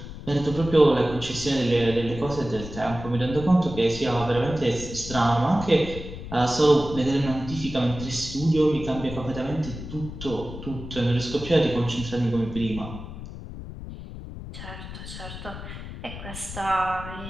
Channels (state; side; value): noise; left; rumble, 11 dB below the sound